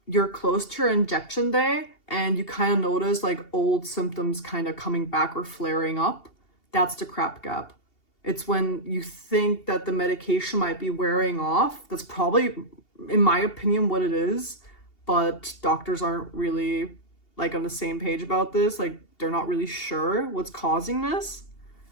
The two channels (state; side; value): late; right; 2.8 ms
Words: you're close to your injection day and you kind of notice like old symptoms kind of coming back or flaring up. That's the crap gap. It's when you think that the medication might be wearing off. That's probably, in my opinion, what it is. But doctors aren't really like on the same page about this. Like, they're not really sure what's causing this.